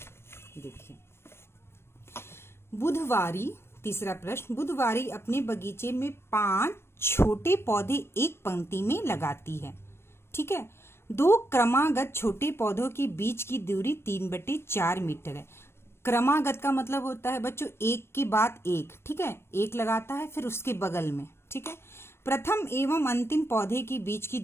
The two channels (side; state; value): right; late; 0.12 ms